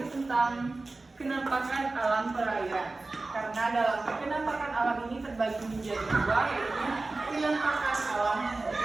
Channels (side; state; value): left; quieter; 3.3 dB